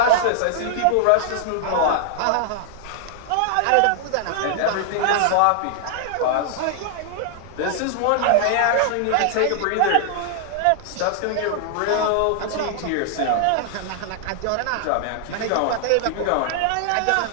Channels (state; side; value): different; both; correlation 0.00